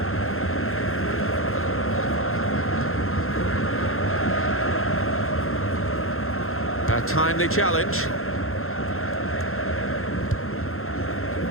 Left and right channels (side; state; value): right; late; 0.62 ms